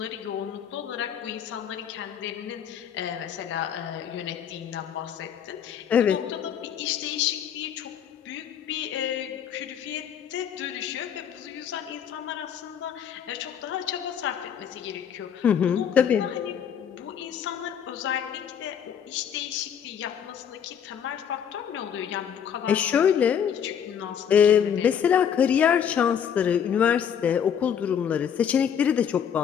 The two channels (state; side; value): quieter; right; 8.4 dB